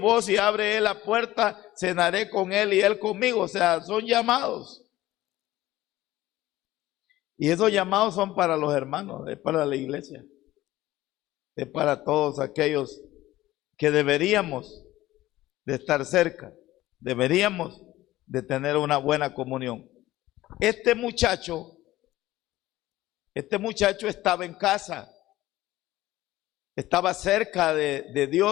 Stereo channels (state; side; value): quieter; right; 16.1 dB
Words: y abre él la puerta, cenaré con él y él conmigo. O sea, son llamados. Y esos llamados son para los hermanos, es para la iglesia, es para todos aquellos que deberíamos de estar cerca, deberíamos de tener una buena comunión. Este muchacho estaba en casa, estaba cerca de